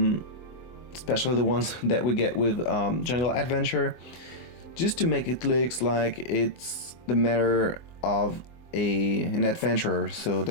especially the ones that we get with Jungle Adventure, just to make it look like it's the matter of an adventurer. So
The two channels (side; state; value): right; late; 24 ms